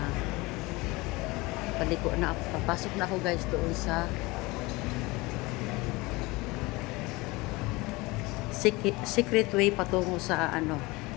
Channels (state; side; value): quieter; right; 22.9 dB